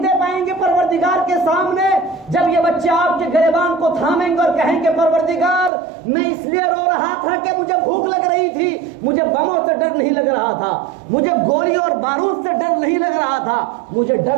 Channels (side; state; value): left; drops out; at 5.7 s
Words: پائیں گے پروردگار کے سامنے جب یہ بچے آپ کے گریبان کو تھامیں گے اور کہیں گے پروردگار میں اس لیے رو رہا تھا کہ مجھے بھوک لگ رہی تھی، مجھے بموں سے ڈر نہیں لگ رہا تھا، مجھے گولی اور بارود سے ڈر نہیں لگ رہا تھا، مجھے